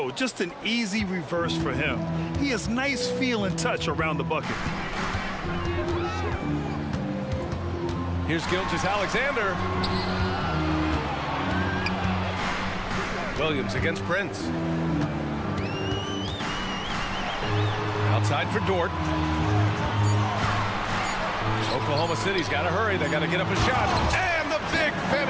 just an easy reverse for him. He has nice feel and touch around the bucket. Here's Gilgeous-Alexander. Williams against Prince. Outside for Dort. Oklahoma City's got to hurry. They got to get up a shot. And the big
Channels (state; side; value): identical; both; correlation 1.00